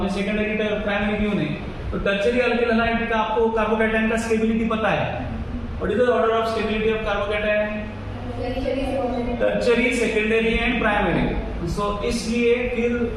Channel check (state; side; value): identical; both; correlation 1.00